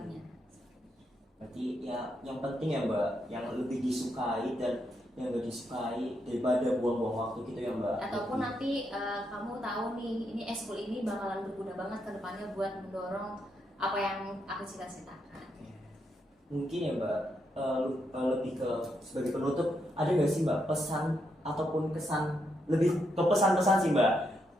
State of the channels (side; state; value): both; normal; correlation 0.80